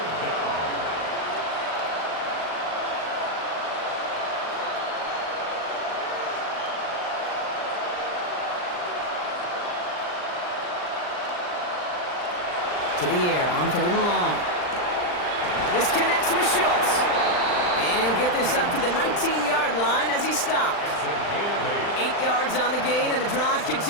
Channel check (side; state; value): right; late; 39 ms